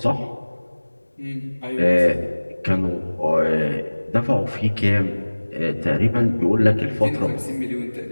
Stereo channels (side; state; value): both; inverted; correlation -1.00